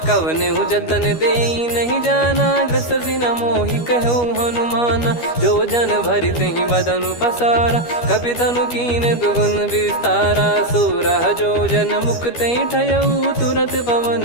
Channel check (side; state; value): right; late; 12 ms